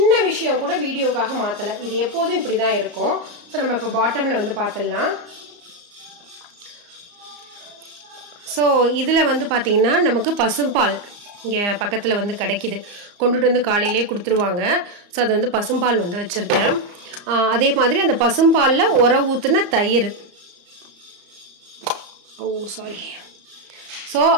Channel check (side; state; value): left; late; 34 ms